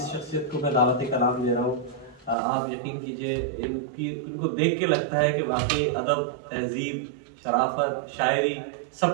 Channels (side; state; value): left; drops out; at 2.4 s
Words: शख्सियत को मैं दावत कलाम दे रहा हूँ, आप यकीन कीजिए इनको देख के लगता है कि वाकई अदब, तहजीब, शराफत, शायरी